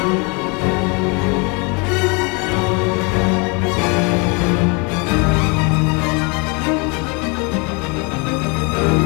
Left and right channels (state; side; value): quieter; right; 31.6 dB